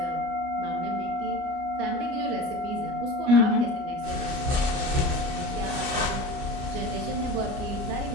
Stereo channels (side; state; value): left; late; 29 ms